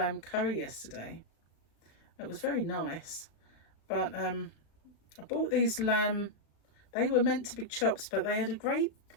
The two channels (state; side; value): late; right; 36 ms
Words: curry yesterday. It was very nice. But I bought these lamb. They were meant to be chops, but they had